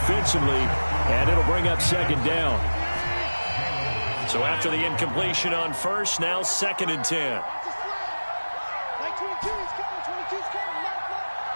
and it'll bring up second down. So after the incompletion on first, now 2nd and 10.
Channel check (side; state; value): both; inverted; correlation -1.00